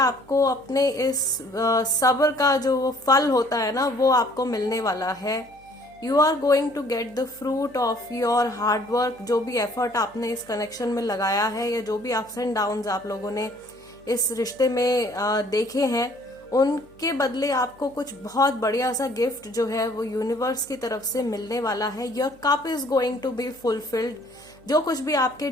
अपने इस सब्र का जो फल होता है ना, वो आपको मिलने वाला है। You are going to get the fruit of your hard work. जो भी एफर्ट आपने इस कनेक्शन में लगाया है, या जो भी अप्स एंड डाउन्स आप लोगों ने इस रिश्ते में देखे हैं, उनके बदले आपको कुछ बहुत बढ़िया सा गिफ्ट जो है वो यूनिवर्स की तरफ से मिलने वाला है। Your cup is going to be fulfilled. जो कुछ भी आपके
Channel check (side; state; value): right; noise; hum, 28 dB below the sound